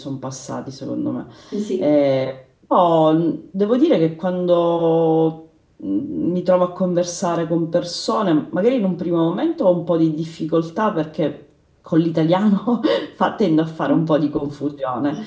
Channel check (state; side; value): identical; both; correlation 1.00